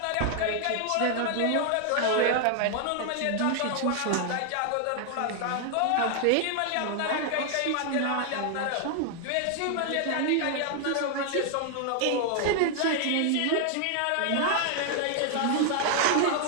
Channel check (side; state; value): both; different; correlation 0.00